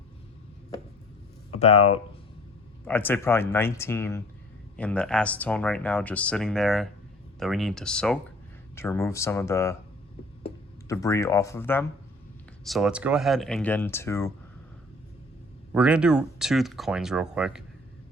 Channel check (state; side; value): normal; both; correlation 0.51